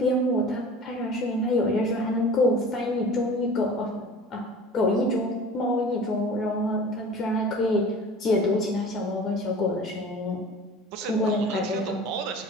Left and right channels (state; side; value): normal; both; correlation 0.41